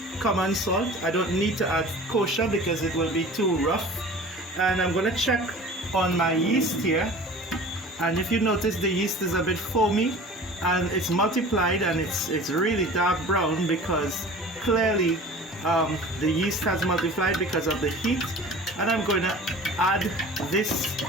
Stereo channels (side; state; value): both; normal; correlation 0.41